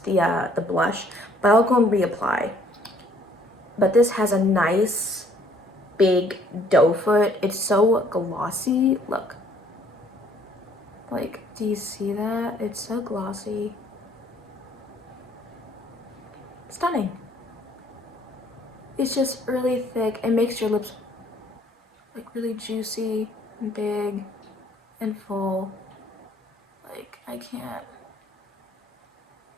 blush, but I'll go and reapply. But this has a nice big doe foot. It's so glossy. Look. Like, do you see that? It's so glossy. Stunning. It's just really thick. It makes your lips like really juicy and big and full. Like, I can't.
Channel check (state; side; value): normal; both; correlation 0.61